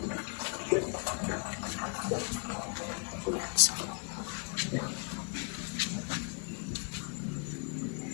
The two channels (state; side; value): quieter; right; 37.4 dB